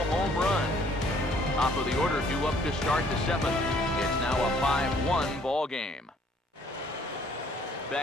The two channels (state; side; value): normal; both; correlation 0.61